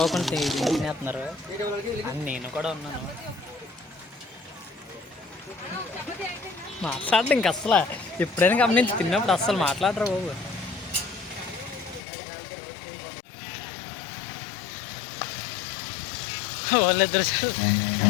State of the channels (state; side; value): drops out; right; at 12.0 s